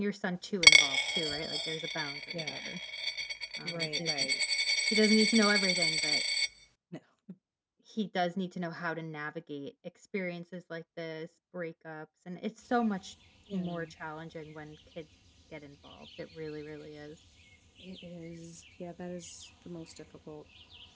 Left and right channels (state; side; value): identical; both; correlation 1.00